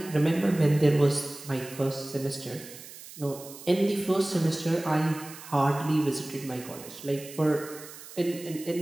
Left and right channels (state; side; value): noise; right; hiss, 16 dB below the sound